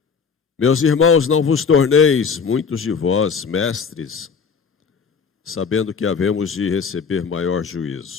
Meus irmãos, não vos torneis, muitos de vós, mestres, sabendo que havemos de receber maior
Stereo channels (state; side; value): quieter; right; 5.8 dB